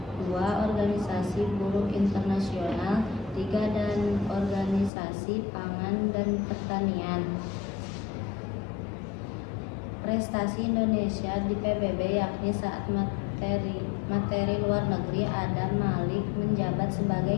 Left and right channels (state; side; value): drops out; right; at 4.9 s